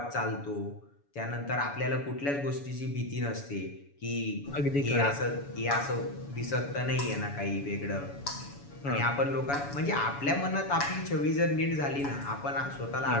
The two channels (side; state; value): right; late; 7.1 ms